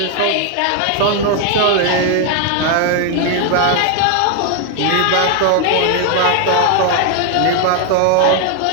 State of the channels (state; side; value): different; both; correlation 0.00